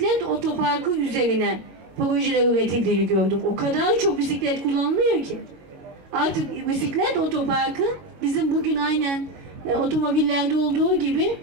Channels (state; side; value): late; left; 22 ms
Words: otoparkı üzerine projeler üretildiğini gördüm. O kadar çok bisiklet kullanılıyor ki. Artık bisiklet otoparkı bizim bugün aynen otomobillerde olduğu gibi